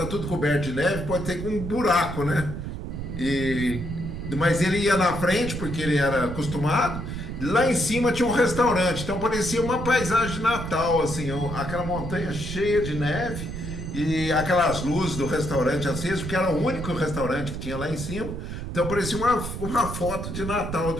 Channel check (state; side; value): noise; right; rumble, 6 dB below the sound